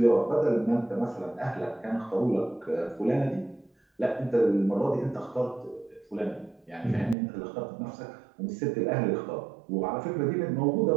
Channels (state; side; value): drops out; left; at 7.2 s